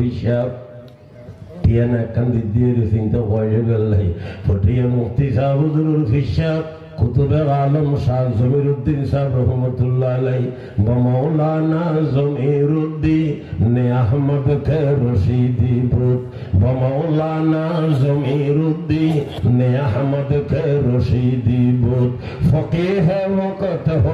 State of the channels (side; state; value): both; identical; correlation 1.00